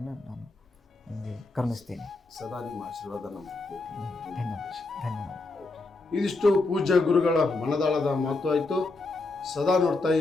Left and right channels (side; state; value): right; quieter; 3.3 dB